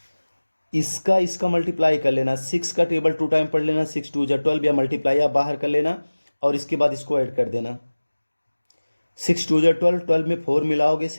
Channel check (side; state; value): both; inverted; correlation -1.00